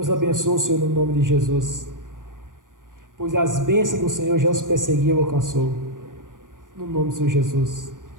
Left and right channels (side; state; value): left; late; 0.89 ms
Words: abençoe o Senhor no nome de Jesus, pois as bênçãos do Senhor já os perseguiu e alcançou. No nome do Senhor Jesus.